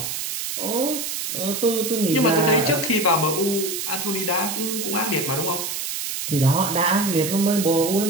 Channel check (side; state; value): right; noise; hiss, 4 dB below the sound